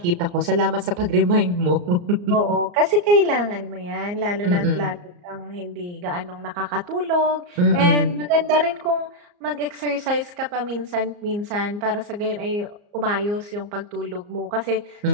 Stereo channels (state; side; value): late; left; 34 ms